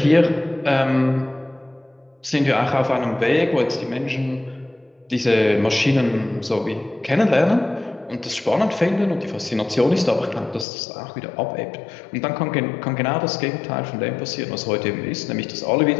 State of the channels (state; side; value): drops out; right; at 10.7 s